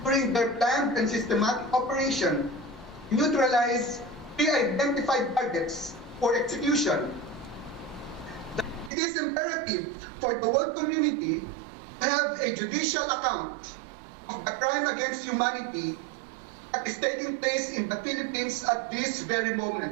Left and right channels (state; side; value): drops out; left; at 8.9 s